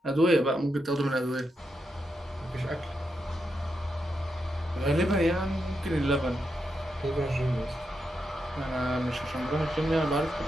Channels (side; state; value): both; normal; correlation 0.85